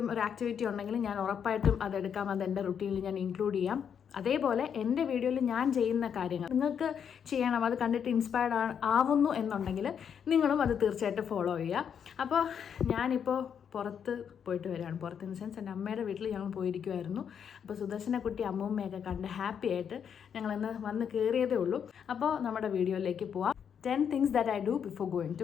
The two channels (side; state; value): right; quieter; 7.8 dB